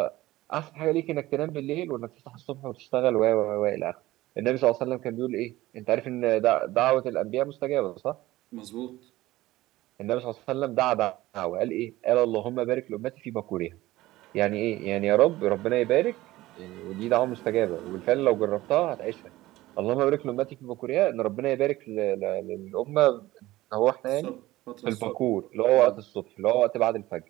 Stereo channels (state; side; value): quieter; left; 17.3 dB